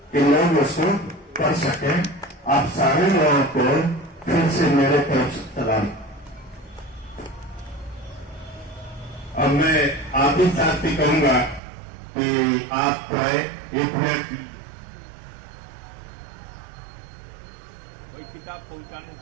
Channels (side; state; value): left; drops out; at 11.6 s